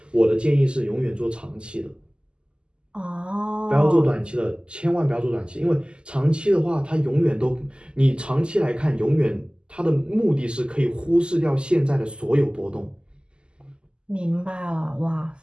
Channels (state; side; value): late; left; 0.049 ms